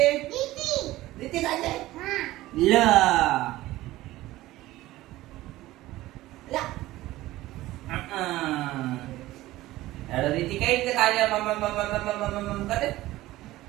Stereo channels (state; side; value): quieter; left; 16.8 dB